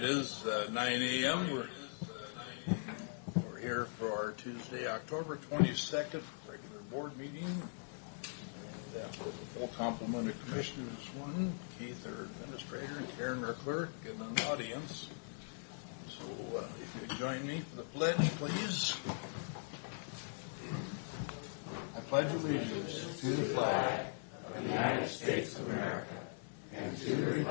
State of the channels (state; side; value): silent; right; digital silence